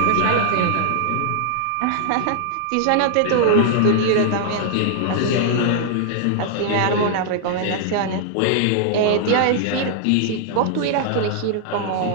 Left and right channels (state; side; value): different; both; correlation -0.01